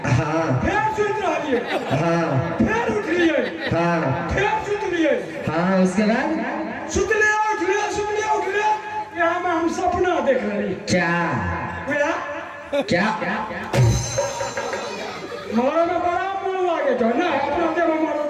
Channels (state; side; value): identical; both; correlation 1.00